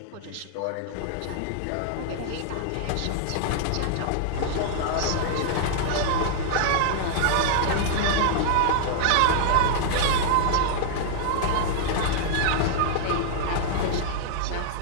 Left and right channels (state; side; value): different; both; correlation -0.01